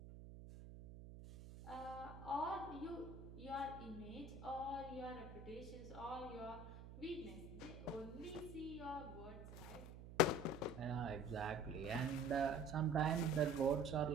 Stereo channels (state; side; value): noise; right; hum, 12 dB below the sound